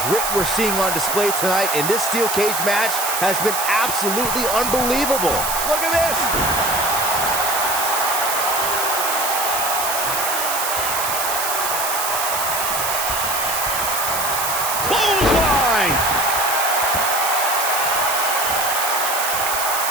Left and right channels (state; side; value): noise; right; hiss, 2 dB below the sound